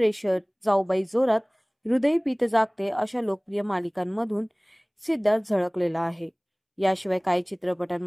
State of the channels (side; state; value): both; identical; correlation 1.00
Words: जाऊबाई जोरात, हृदय पीत जागते अशा लोकप्रिय मालिकांमधून सिद्धार्थ झळकलेला आहे. याशिवाय काही